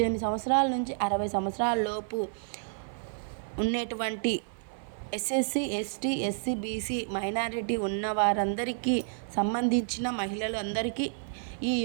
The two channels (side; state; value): left; silent; 55 dB below the other